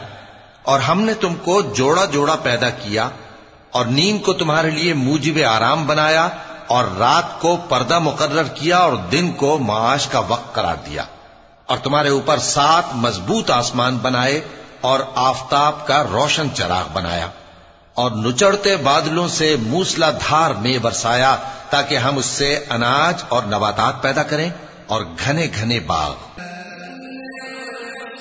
और हमने तुमको जोड़ा जोड़ा पैदा किया और नींद को तुम्हारे लिए मूजिब आराम बनाया और रात को पर्दा मुकर्रर किया और दिन को माश का वक्त करार दिया और तुम्हारे ऊपर 7 मजबूत आसमान बनाए और आफताब का रोशन चराग बनाया और नुचड़ते बादलों से मूसलाधार में बरसाया ताकि हम उससे अनाज और नबातात पैदा करें और घने घने बाग। इन्न यौमल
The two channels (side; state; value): both; identical; correlation 1.00